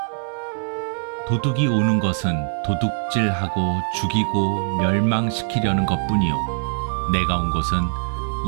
도둑이 오는 것은 도둑질하고 죽이고 멸망시키려는 것뿐이요 내가 온 것은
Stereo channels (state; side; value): silent; left; 64 dB below the other